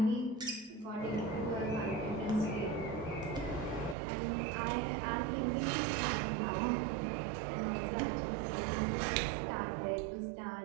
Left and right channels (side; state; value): left; drops out; at 4.0 s